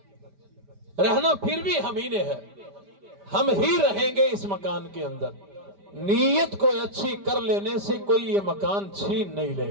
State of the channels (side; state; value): left; late; 5.0 ms